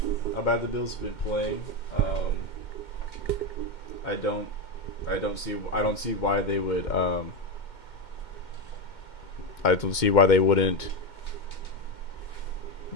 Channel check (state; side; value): late; right; 2.1 ms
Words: How bad the Bills have been playing. I don't see why they would. I don't see why they wouldn't